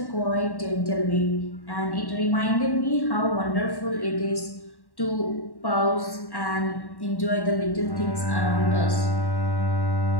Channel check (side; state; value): right; late; 1.1 ms